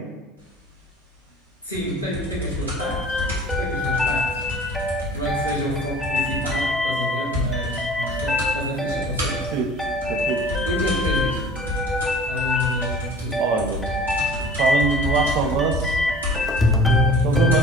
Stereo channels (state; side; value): normal; both; correlation 0.45